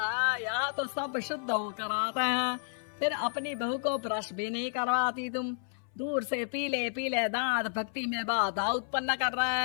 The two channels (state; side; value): silent; right; 57 dB below the other